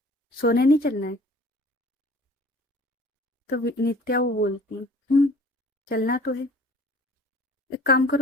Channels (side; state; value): both; normal; correlation 0.49